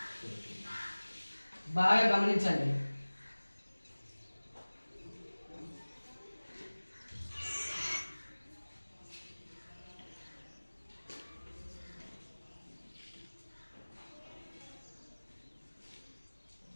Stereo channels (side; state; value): both; inverted; correlation -1.00